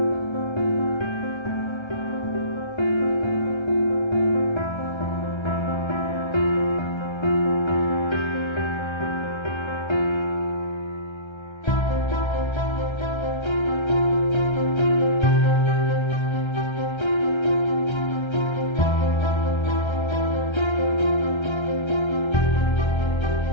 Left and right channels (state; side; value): late; right; 1.3 ms